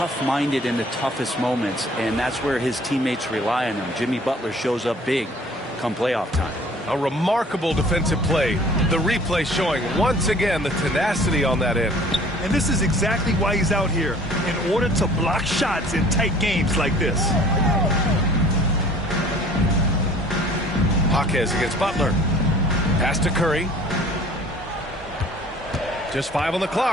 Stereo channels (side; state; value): both; normal; correlation 0.51